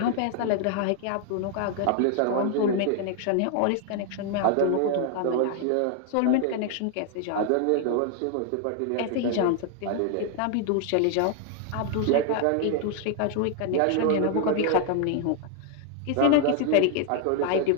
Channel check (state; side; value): different; both; correlation 0.00